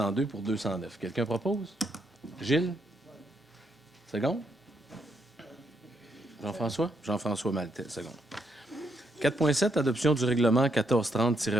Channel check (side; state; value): both; normal; correlation 0.76